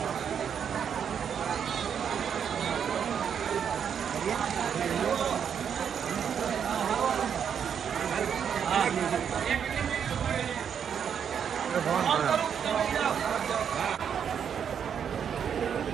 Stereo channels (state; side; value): quieter; left; 7.8 dB